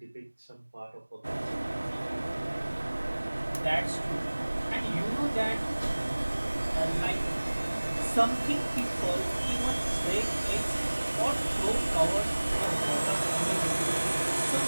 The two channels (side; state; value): both; inverted; correlation -1.00